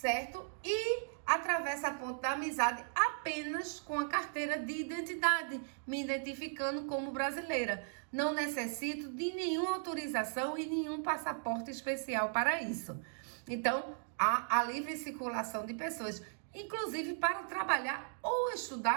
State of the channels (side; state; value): left; silent; digital silence